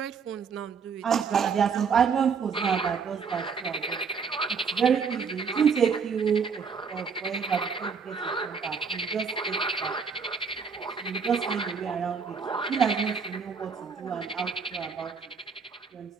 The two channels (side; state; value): left; quieter; 5.9 dB